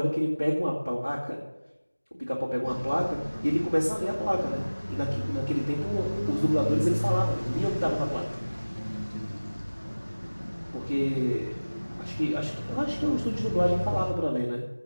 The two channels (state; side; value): inverted; both; correlation -1.00